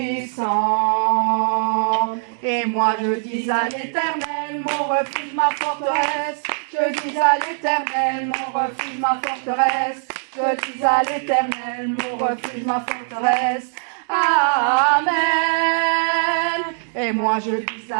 Et moi je dis à l'Éternel, mon refuge, ma forteresse. Je dis à l'Éternel, mon refuge, ma forteresse. Je dis à l'Éternel, mon refuge, ma forteresse. Amen. Et moi je dis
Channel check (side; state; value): left; silent; 65 dB below the other